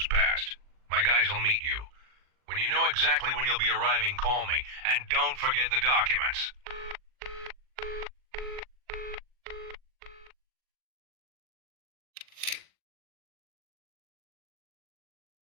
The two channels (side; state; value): left; late; 40 ms